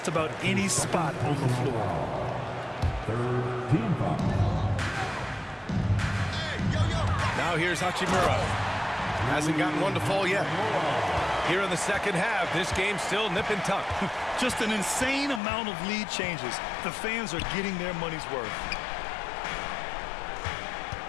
about any spot on the floor. Third team foul. Now here's Hachimura. Hasn't gotten one to fall yet. Here in the second half, this game's still nip and tuck. Just an insane amount of lead changes. The fans are getting their money's worth.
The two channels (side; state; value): right; drops out; at 15.4 s